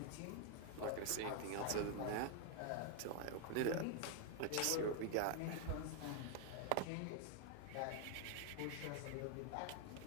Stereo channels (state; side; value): different; both; correlation 0.00